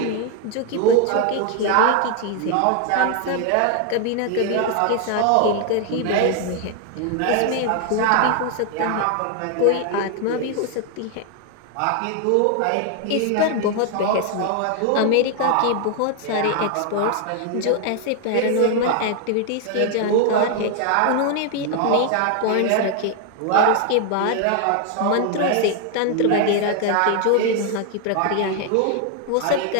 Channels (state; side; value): different; both; correlation 0.00